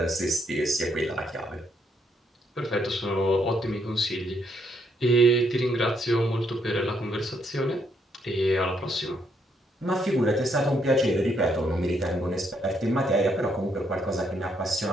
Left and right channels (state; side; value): normal; both; correlation 0.73